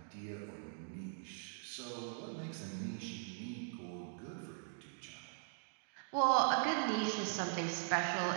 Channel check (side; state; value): left; silent; digital silence